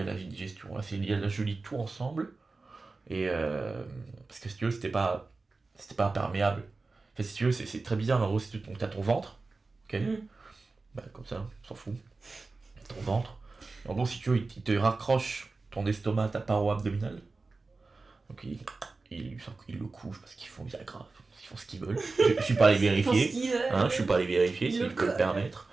à la digestion, là, c'est lié à la, je lis tout ensemble, et parce que si tu veux, c'était pas imperméable. Enfin, si tu veux, c'est très bizarre, mais en gros, si tu as ton ventre, ok, bah, comme ça, on s'en fout, ton ventre, en gros, si tu veux, il te raccroche ton estomac à ta paroi abdominale, donc ils le couchent parce qu'ils font des agrafes, ils font ce qu'ils veulent. Je suis pas allé vérifier, je suis pas allé vérifier s'ils peuvent le permettre.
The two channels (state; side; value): quieter; left; 3.7 dB